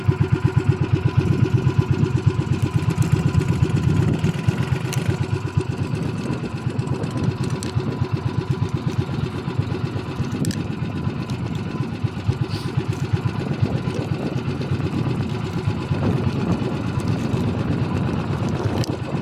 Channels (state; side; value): identical; both; correlation 1.00